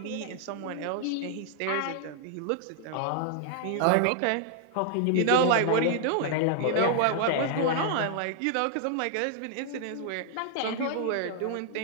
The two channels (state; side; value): different; both; correlation -0.01